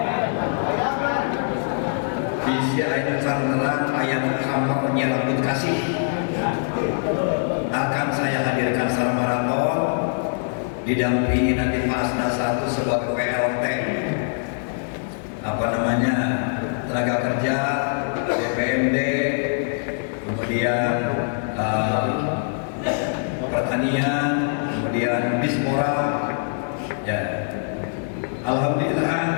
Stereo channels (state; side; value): silent; right; digital silence